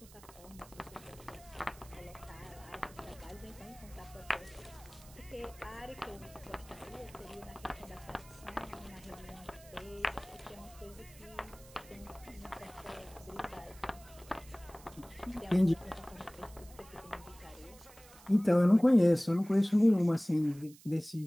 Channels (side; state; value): right; noise; hiss, 22 dB below the sound